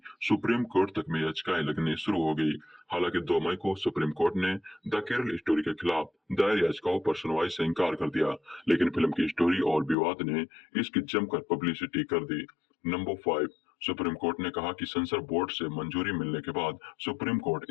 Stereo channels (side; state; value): right; drops out; at 10.0 s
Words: सुप्रीम कोर्ट तक में याचिकाएं लगनी शुरू हो गई। हालांकि 2 मई को सुप्रीम कोर्ट ने द केरल स्टोरी के खिलाफ दायर याचिकाओं पर सुनवाई से इंकार कर दिया, लेकिन फिल्म की स्टोरी और विवाद ने इसकी जमकर पब्लिसिटी कर दी। नंबर 5, सुप्रीम कोर्ट ने कहा कि सेंसर बोर्ड से मंजूरी मिलने के बाद सुप्रीम कोर्ट